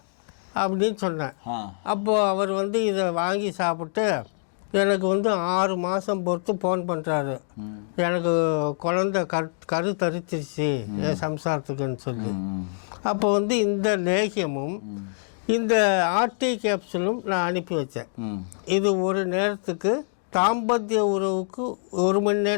அப்படின்னு சொன்னேன். அப்போது அவர் இதை வாங்கி சாப்பிட்டு எனக்கு 6 மாதம் பொறுத்து ஃபோன் பண்ணுறாரு, எனக்கு குழந்தை கரு தரிச்சிருச்சு என் சம்சாரத்துக்குன்னு சொல்லி. அப்போ இந்த லேகியமும் இந்த ஆர்டி கேப்சூலும் நான் அனுப்பி வச்சேன். இது ஒரு நேரத்துக்கு தாம்பத்திய உறவுக்கு 1 மணி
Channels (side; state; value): right; silent; 62 dB below the other